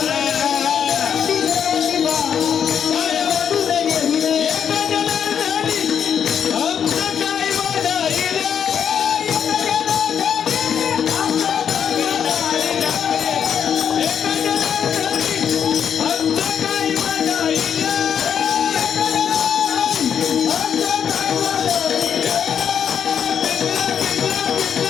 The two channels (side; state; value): right; quieter; 8.1 dB